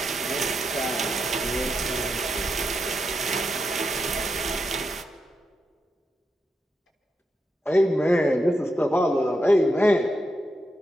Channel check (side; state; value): both; normal; correlation 0.85